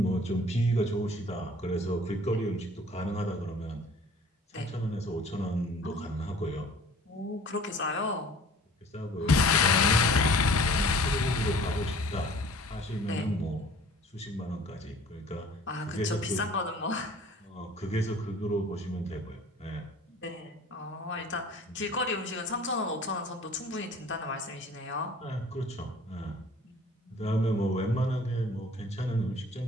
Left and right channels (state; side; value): normal; both; correlation 0.49